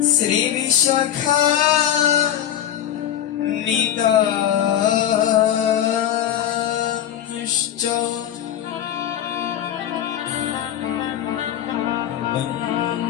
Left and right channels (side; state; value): right; quieter; 10.7 dB